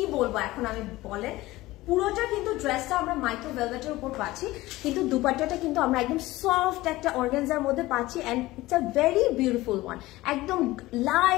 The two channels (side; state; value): right; quieter; 18.3 dB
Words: বলবো এখন আমি বলেন, পুরোটা কিন্তু ড্রেসটা আমরা মাইক্রো ভেলভেটের উপর পাচ্ছি, কিন্তু দুপাট্টাটা কিন্তু আমরা একদম সফট একটা অর্গানজার মধ্যে পাচ্ছি। And it's a very beautiful one, একদম